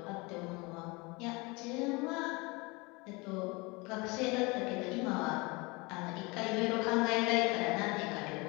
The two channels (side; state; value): right; quieter; 26.1 dB